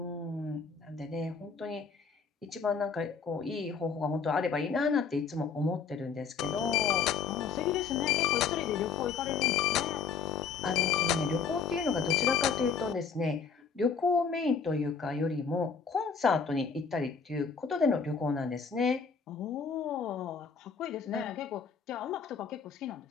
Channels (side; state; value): right; quieter; 5.8 dB